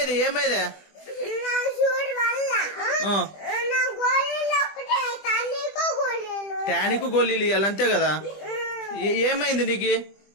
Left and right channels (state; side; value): late; right; 20 ms